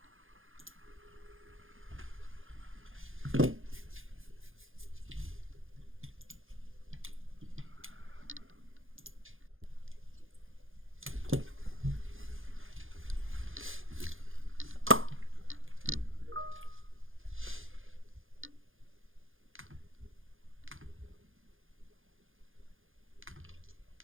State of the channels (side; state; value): left; late; 0.59 ms